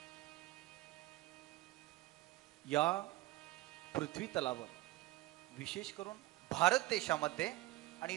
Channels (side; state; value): left; quieter; 17.7 dB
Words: या पृथ्वी तलावर विशेष करून भारत देशामध्ये आणि